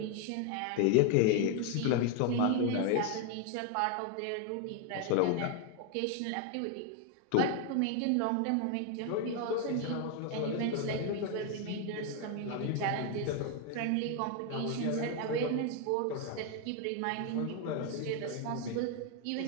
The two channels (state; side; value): different; both; correlation 0.01